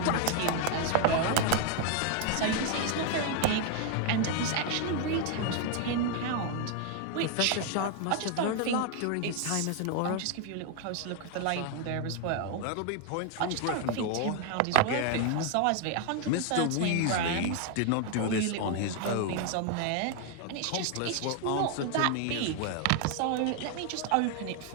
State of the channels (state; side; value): different; both; correlation 0.00